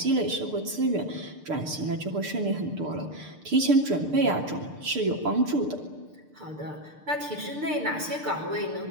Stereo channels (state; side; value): late; left; 6.7 ms